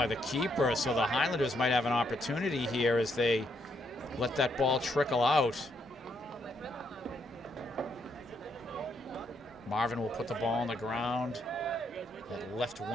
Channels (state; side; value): normal; both; correlation 0.75